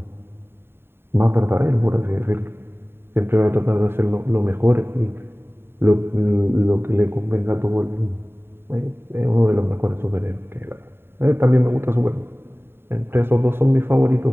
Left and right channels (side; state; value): left; late; 0.11 ms